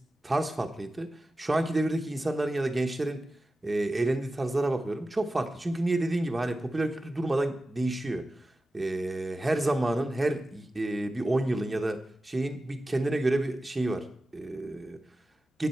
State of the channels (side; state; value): both; normal; correlation 0.94